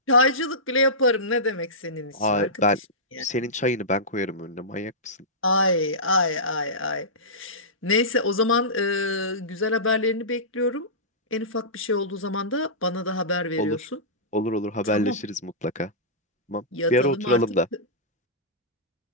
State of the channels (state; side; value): normal; both; correlation -0.18